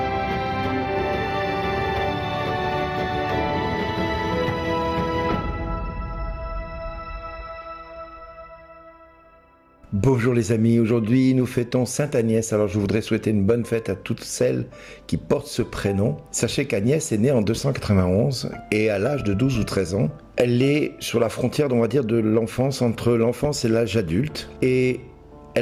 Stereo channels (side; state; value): both; identical; correlation 1.00